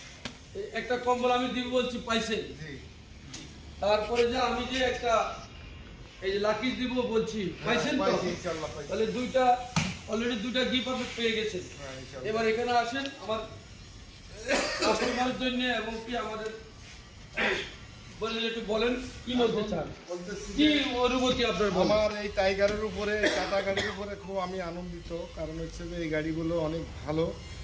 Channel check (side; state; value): both; identical; correlation 1.00